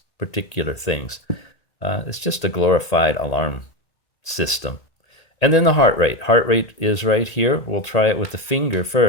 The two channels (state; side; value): late; right; 1.9 ms